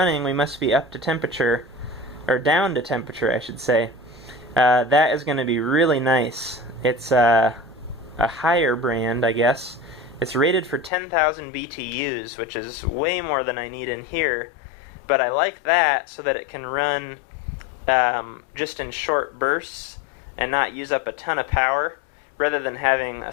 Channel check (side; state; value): right; drops out; at 10.9 s